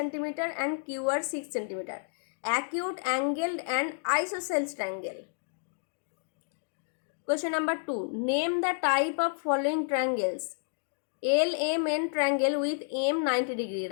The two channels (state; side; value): silent; right; digital silence